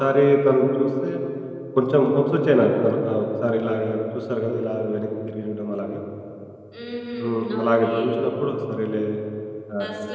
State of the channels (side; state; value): both; identical; correlation 1.00